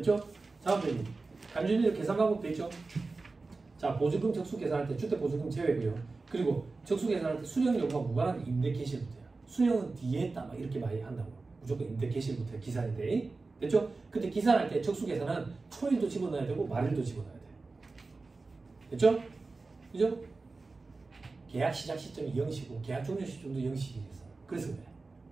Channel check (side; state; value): left; quieter; 3.7 dB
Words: 다음 페이지. 간주인들 계산 방법 됐죠? 자, 보증금 적수 계산할 때 주택 보증금 제외고요. 그리고 적수 계산할 때 수령 여부와 무관한 임대 개시일부터요. 수령은 뒤에 했다 막 이렇게 많이 한다고. 무조건 임대 개시일부터 기산인데. 됐죠? 근데 기산할 때 적수 계산은 초일도 집어넣어야 되고 말일도 집어넣어야 돼요. 됐죠? 그죠? 계약 시작 시점이 0시고 계약 종료 시점도 0시겠어. 그래서 그래.